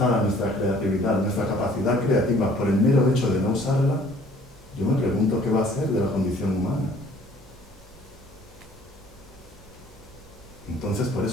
nuestra creatividad, nuestra capacidad creativa por el mero hecho de no usarla, yo me pregunto qué va a ser de la condición humana. Entonces, por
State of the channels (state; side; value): normal; both; correlation 0.56